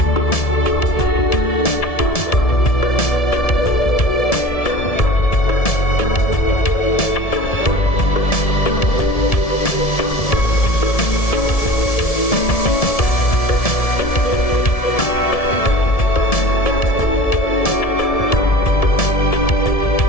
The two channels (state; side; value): late; right; 1.7 ms